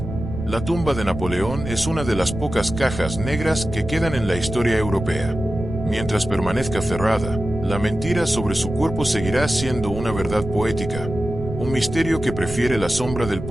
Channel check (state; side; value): noise; right; rumble, 8 dB below the sound